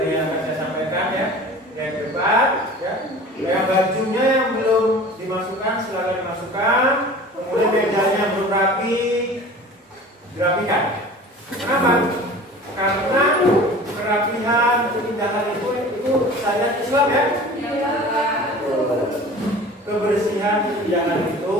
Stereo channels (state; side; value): normal; both; correlation 0.41